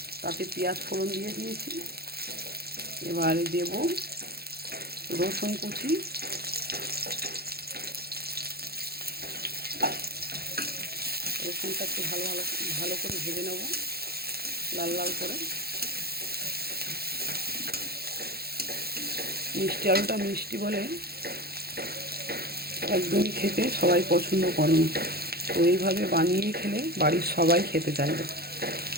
তাতে পেঁয়াজ ফোড়ন দিয়ে দিয়েছি। এবারে দেব রসুন কুচি, রসুনটা একটু ভালো করে ভেজে নেব, লাল লাল করে। মিষ্টি আলুটা মিষ্টি বলে একদমই খেতে সবাই পছন্দ করে না, তো এইভাবে বানিয়ে খেলে বাড়ির সবাই খেতে চাইবে।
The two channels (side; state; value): left; late; 0.46 ms